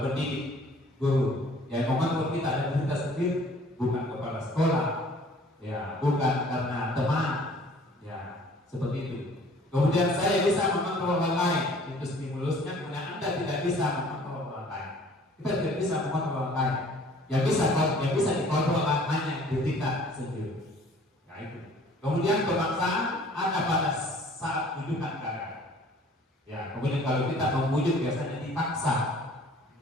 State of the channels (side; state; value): both; normal; correlation 0.53